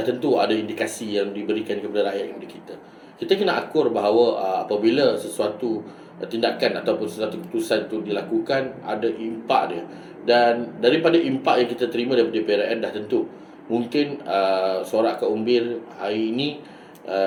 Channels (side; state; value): both; identical; correlation 1.00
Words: ada indikasi yang diberikan kepada rakyat kepada kita. Kita kena akur bahawa apabila sesuatu tindakan ataupun sesuatu keputusan itu dilakukan, ada impak dia. Dan daripada impak yang kita terima daripada PRN, dah tentu mungkin Suara Akar Umbir hari ini